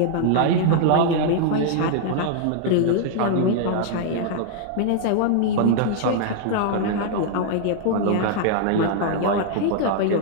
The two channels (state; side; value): different; both; correlation -0.01